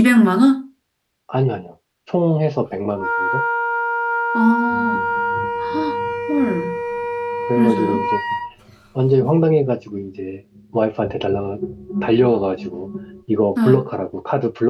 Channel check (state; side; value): identical; both; correlation 1.00